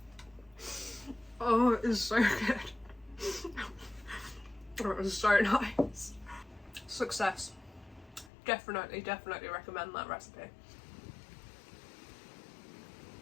Oh, it is so good. It was so nice. Success. Definitely recommend that recipe.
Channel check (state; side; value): drops out; right; at 8.3 s